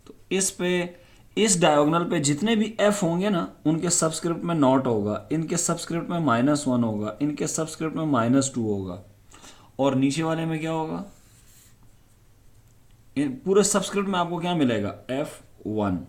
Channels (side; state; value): both; identical; correlation 1.00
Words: तो इस पे इस डायगोनल पे जितने भी एफ होंगे ना उनके सबस्क्रिप्ट में नॉट होगा, इनके सबस्क्रिप्ट में -1 होगा, इनके सबस्क्रिप्ट में -2 होगा, और नीचे वाले में क्या होगा, इन पूरे सबस्क्रिप्ट में आपको क्या मिलेगा, F1।